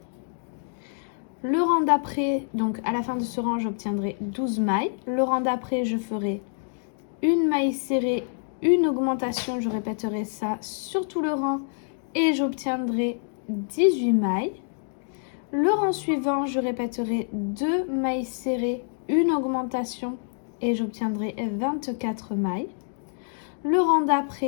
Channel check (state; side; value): silent; right; digital silence